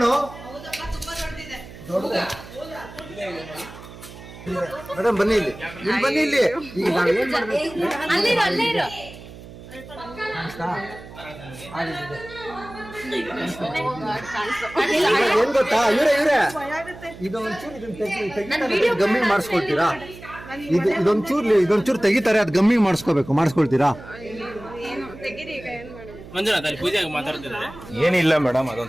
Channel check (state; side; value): noise; right; hum, 16 dB below the sound